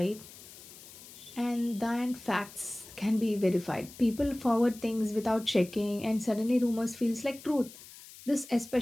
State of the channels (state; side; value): noise; left; hiss, 18 dB below the sound